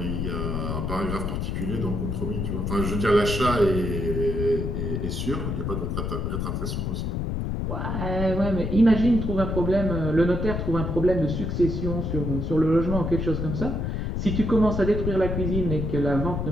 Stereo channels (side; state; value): left; noise; rumble, 2 dB below the sound